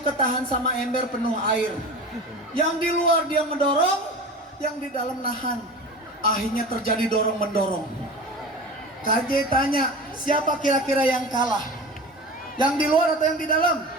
ketahan sama ember penuh air. Yang di luar dia mendorong, yang di dalam nahan. Akhirnya terjadi dorong-mendorong. KJ tanya, siapa kira-kira yang kalah? Yang di luar atau yang di dalam?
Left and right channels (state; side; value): normal; both; correlation 0.33